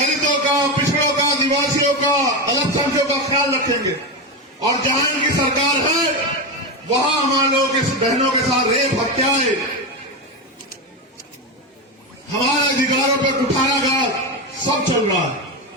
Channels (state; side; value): normal; both; correlation 0.15